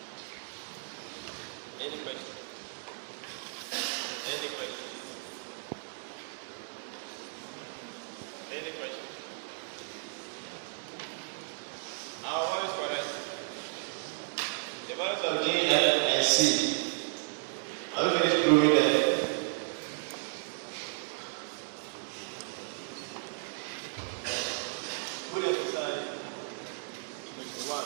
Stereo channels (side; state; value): left; silent; digital silence